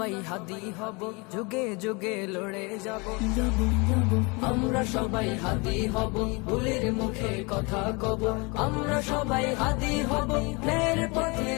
হাদি হব, যুগে যুগে লড়ে যাব। আমরা সবাই হাদি হব, ভুলের মুখে কথা কব। আমরা সবাই হাদি হব, ন্যায়ের পথে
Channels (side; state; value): right; quieter; 28.6 dB